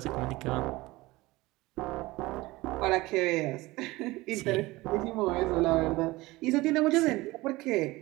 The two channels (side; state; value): left; quieter; 20.3 dB